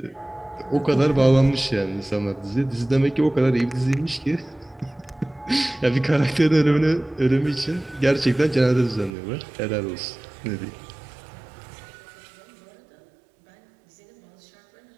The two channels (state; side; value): drops out; left; at 9.1 s